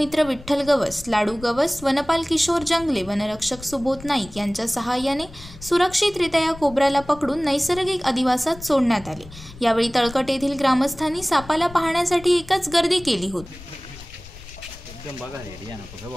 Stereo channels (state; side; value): noise; left; rumble, 17 dB below the sound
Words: विठ्ठल गवस, लाडू गवस, वनपाल किशोर जंगले, वनरक्षक सुबोध नाईक यांच्या सहाय्याने सुरक्षितरित्या या कोब्राला पकडून नैसर्गिक अधिवासात सोडण्यात आले। यावेळी तळकट येथील ग्रामस्थांनी सापाला पाहण्यासाठी एकच गर्दी केली होती। एकदम बघा रे या नको